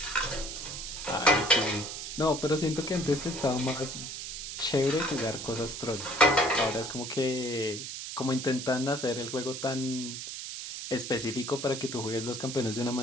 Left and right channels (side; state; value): right; noise; hiss, 7 dB below the sound